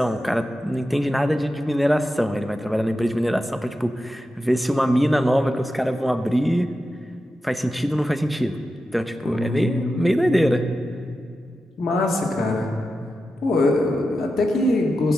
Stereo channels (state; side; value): normal; both; correlation 0.90